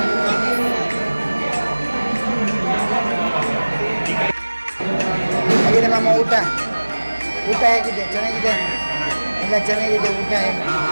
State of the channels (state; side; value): inverted; both; correlation -1.00